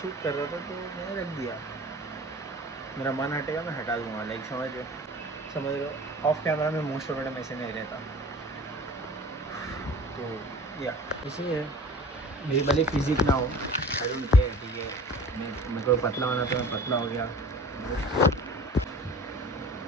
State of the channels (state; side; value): normal; both; correlation 0.43